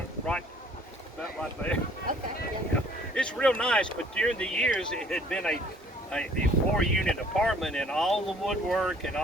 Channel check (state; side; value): normal; both; correlation 0.57